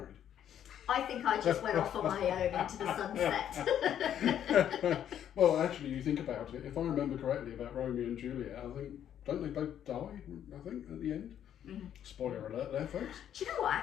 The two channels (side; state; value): right; quieter; 10.0 dB